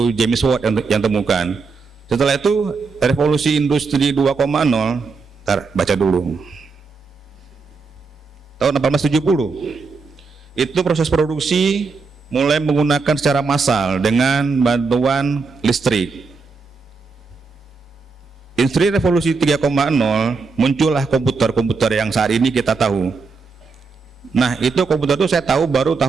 James Watt yang temukan. Setelah itu revolusi industri 2,0, baca dulu. Tahun 1870. Itu proses produksi mulai menggunakan secara massal dengan bantuan listrik. Industri revolusi 3,0 muncullah komputer yang saat ini kita tahu. Nah itu komputer itu saya tahu baru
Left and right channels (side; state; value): left; quieter; 4.5 dB